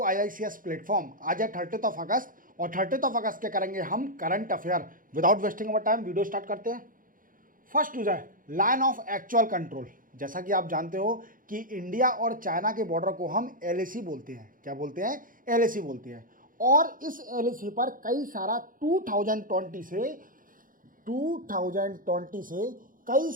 IICS platform. आज है 30 अगस्त और 30 अगस्त के करेंगे हम current affair. Without wasting our time video start करते हैं। फर्स्ट न्यूज है लाइन ऑफ एक्चुअल कंट्रोल। जैसा कि आप जानते हो कि इंडिया और चाइना के बॉर्डर को हम LAC बोलते हैं। क्या बोलते हैं? LAC बोलते हैं। और इस LAC पर कई सारा 2020 से कई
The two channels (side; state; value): left; late; 0.40 ms